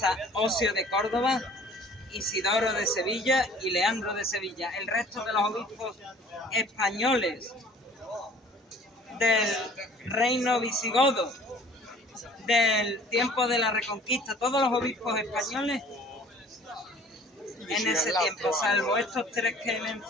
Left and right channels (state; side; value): normal; both; correlation 0.51